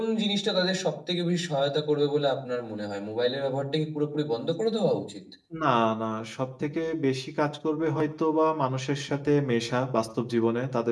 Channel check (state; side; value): identical; both; correlation 1.00